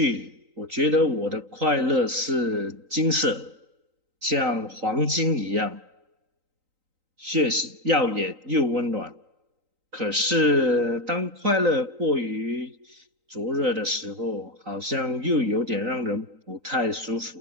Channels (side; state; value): left; late; 3.9 ms